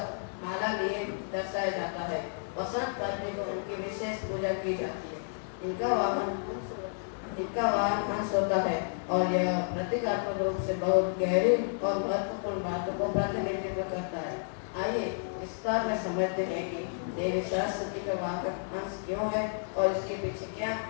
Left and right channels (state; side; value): silent; right; 56 dB below the other